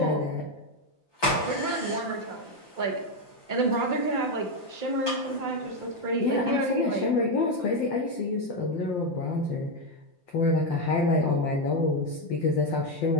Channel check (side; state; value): right; late; 5.8 ms